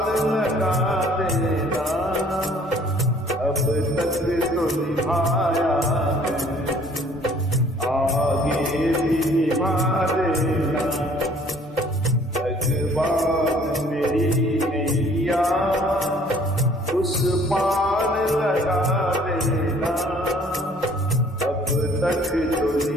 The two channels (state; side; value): normal; both; correlation 0.57